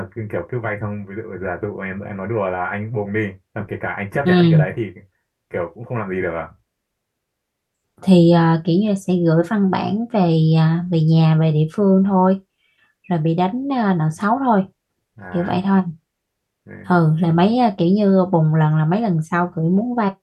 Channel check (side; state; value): both; identical; correlation 1.00